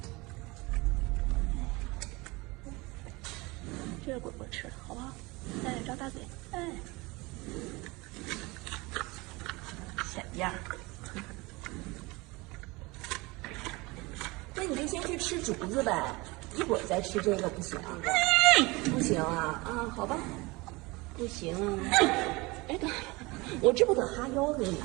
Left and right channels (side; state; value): left; quieter; 24.0 dB